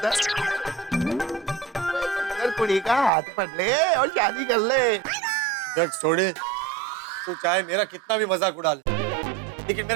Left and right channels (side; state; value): left; drops out; at 3.1 s